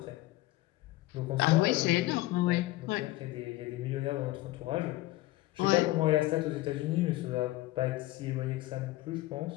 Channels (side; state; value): right; quieter; 18.0 dB